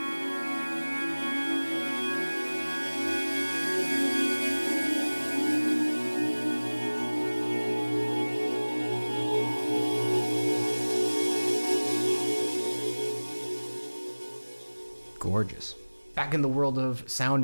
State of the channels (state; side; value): inverted; both; correlation -1.00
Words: Gorgeous. Back in the world of sound